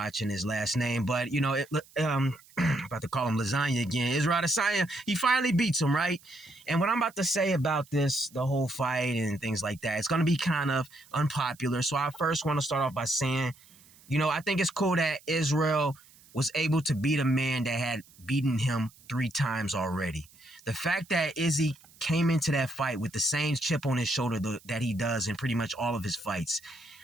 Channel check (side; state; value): right; noise; hiss, 26 dB below the sound